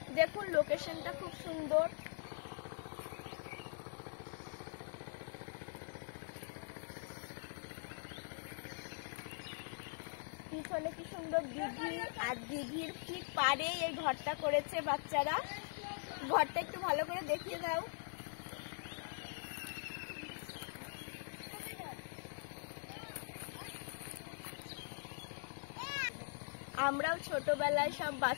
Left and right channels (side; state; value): right; silent; digital silence